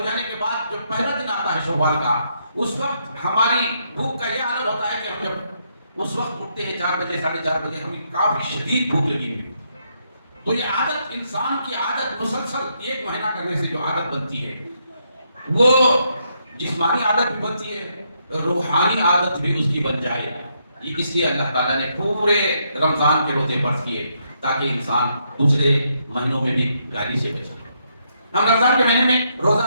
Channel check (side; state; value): both; inverted; correlation -0.76